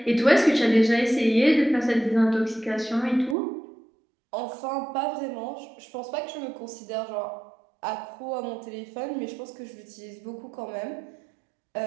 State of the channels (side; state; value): left; drops out; at 3.4 s